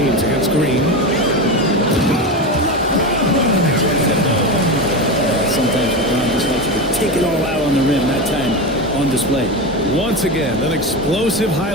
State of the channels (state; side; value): normal; both; correlation 0.20